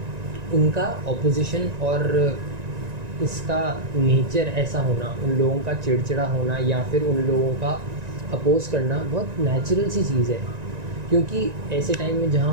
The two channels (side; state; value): left; late; 1.9 ms